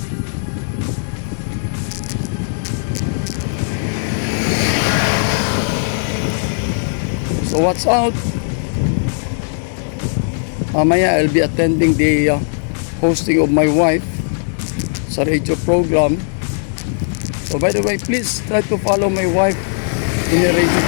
So what's out? Mamaya I'll be attending the hosting of my wife sa radio program. So by the way, please try to follow my wife in the radio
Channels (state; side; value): silent; right; digital silence